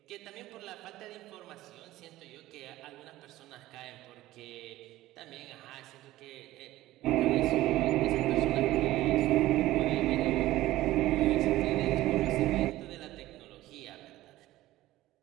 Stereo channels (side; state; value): left; quieter; 16.1 dB